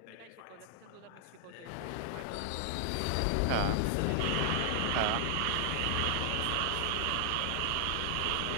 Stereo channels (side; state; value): both; different; correlation 0.00